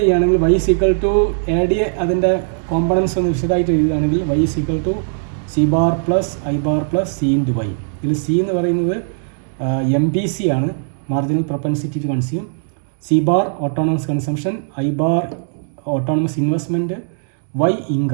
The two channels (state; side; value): silent; left; digital silence